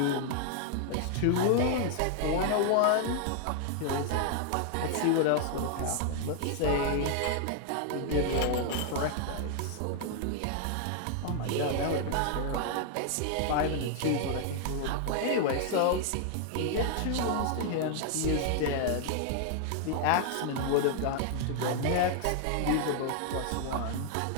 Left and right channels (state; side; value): different; both; correlation 0.00